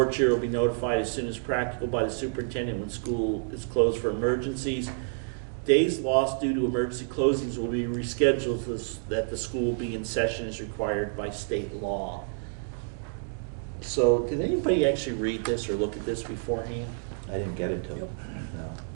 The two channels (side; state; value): left; silent; digital silence